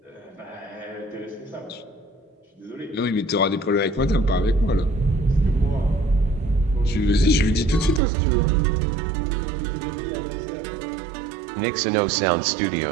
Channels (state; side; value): drops out; left; at 8.0 s